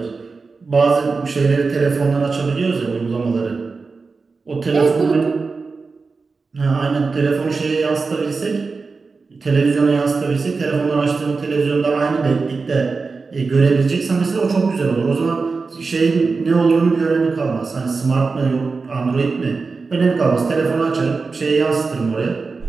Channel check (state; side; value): quieter; left; 4.4 dB